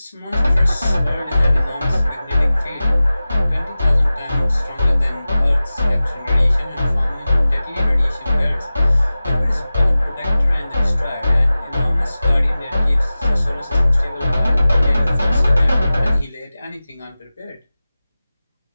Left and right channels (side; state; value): both; inverted; correlation -0.96